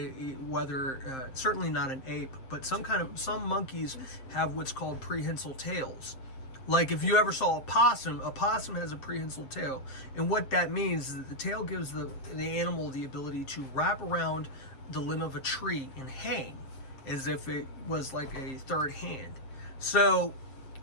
whether certainly not an ape, but some monkeys have what's called prehensile tails. Like if you ever saw a possum has a prehensile tail, and what that means is that the tail gives the animal the ability to wrap around the limb of a tree and hang as if it was like a third hand. So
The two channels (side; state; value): right; late; 7.6 ms